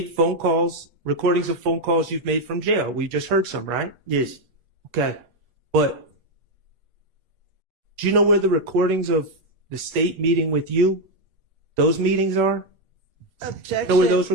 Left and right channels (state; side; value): late; left; 8.3 ms